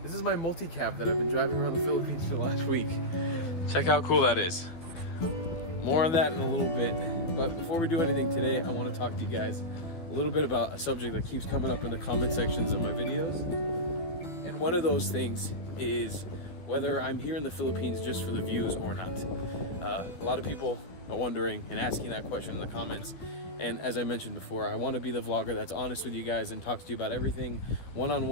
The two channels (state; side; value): late; right; 12 ms